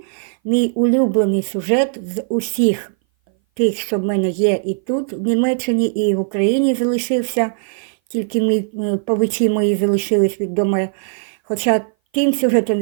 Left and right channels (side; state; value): left; silent; 59 dB below the other